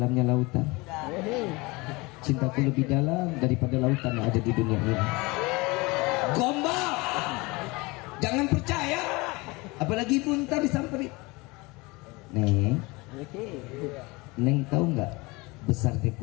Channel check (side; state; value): right; quieter; 24.5 dB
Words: lautan? Cintaku lebih dalam daripada lautan yang ada di dunia ini. Gombal, jangan percaya. Apalagi ibu ntar disamperin. Neng tahu nggak besarnya